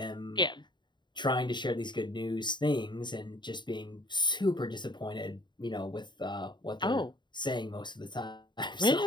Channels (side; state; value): right; late; 0.22 ms